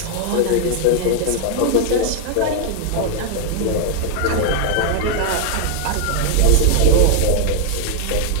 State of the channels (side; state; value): both; different; correlation 0.00